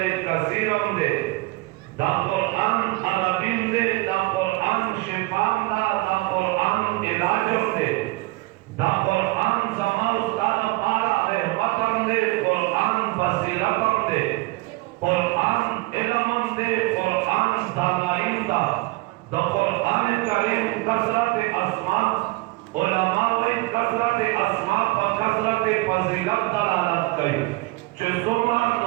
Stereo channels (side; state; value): left; quieter; 22.6 dB